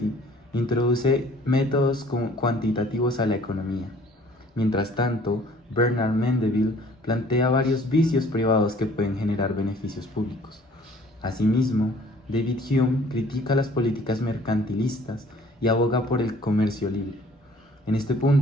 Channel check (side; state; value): both; normal; correlation 0.54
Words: introduce métodos cuantitativos a la economía. Mientras tanto, Bernard Mandeville plantea varios vicios privados que pueden generar beneficios públicos. Asimismo, David Hume critica las políticas mercantilistas y aboga por el comercio libre. En este